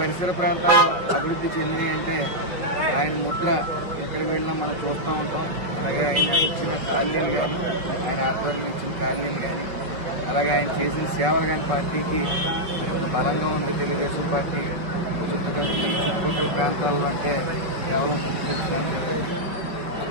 ప్రాంతాల్లో అభివృద్ధి చెందినవి అంటే ఆయన ముద్ర ఎక్కడికి వెళ్ళినా మనం చూస్తూ ఉంటాం. అలాగే ఆయన ఇచ్చిన కాలనీలు కానీ ఆయన ఆధ్వర్యం ఇచ్చిన కాలనీలు కానీ అలాగే ఆయన చేసిన సేవలు కానీ పార్టీకి బలంగా ఉంది. తెలుగుదేశం పార్టీ చుట్టుపక్కల ప్రాంతాల్లో అంటే కేవలం తెలుసుకోవడానికి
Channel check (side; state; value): left; late; 5.8 ms